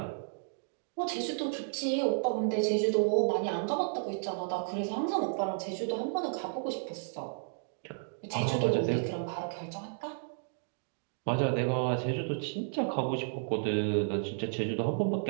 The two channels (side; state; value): left; silent; digital silence